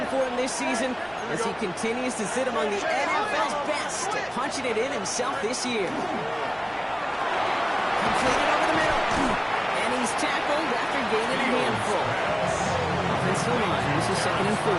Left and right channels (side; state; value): both; identical; correlation 1.00